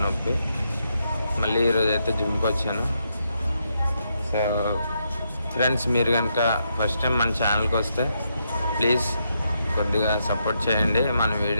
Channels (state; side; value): inverted; both; correlation -0.80